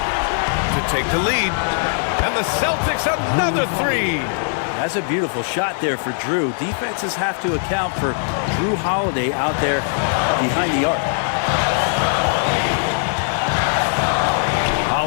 to take the lead. And the Celtics another 3. That's a beautiful shot there for Drew. Defenses have to account for Drew Holiday out there behind the arc.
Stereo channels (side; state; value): right; silent; digital silence